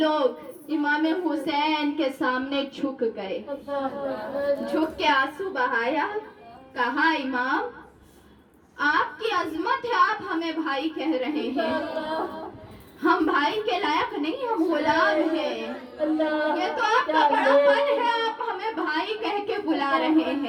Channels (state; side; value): identical; both; correlation 1.00